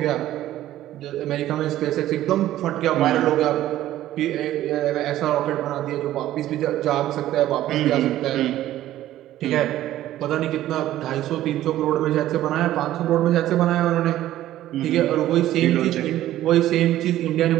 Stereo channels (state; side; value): quieter; left; 13.7 dB